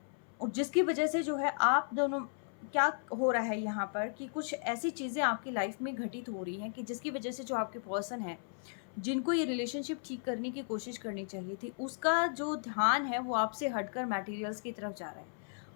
और जिसकी वजह से जो है आप दोनों, क्या हो रहा है यहाँ पर कि कुछ ऐसी चीज़ें आपकी लाइफ में घटित हो रही हैं कि जिसकी वजह से जो आपके पर्सन है जिनको ये रिलेशनशिप ठीक करने की कोशिश करनी चाहिए थी, उसका जो ध्यान है वो आपसे हटकर मटेरियल्स की तरफ जा रहा है,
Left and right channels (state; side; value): silent; right; 54 dB below the other